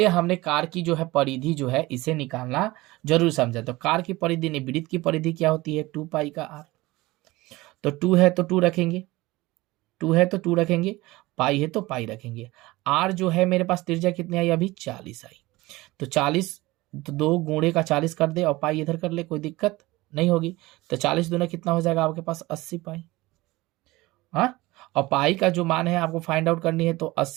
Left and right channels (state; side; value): quieter; left; 20.1 dB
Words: हमने कार की जो है परिधि जो है इसे निकालना जरूर समझा। तो कार की परिधि नहीं, वृत्त की परिधि क्या होती है, 2 पाई का आर। तो 2 है तो 2 रखेंगे, 2 है तो 2 रखेंगे, पाई है तो पाई रखेंगे। आर जो है मेरे पास त्रिज्या कितनी आई, अभी 40 आई, तो 40 तो 2 गुणे का 40 कर दे और पाई इधर कर ले, कोई दिक्कत नहीं होगी। तो 40 दूना कितना हो जाएगा आपके पास, 80 पाई। हाँ, और पाई का जो मान है आपको फाइंड आउट करनी है, तो